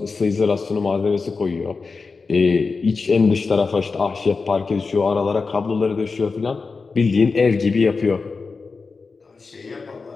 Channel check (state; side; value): quieter; right; 4.4 dB